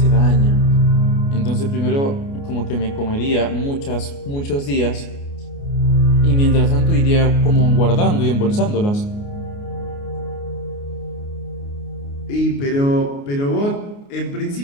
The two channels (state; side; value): late; right; 29 ms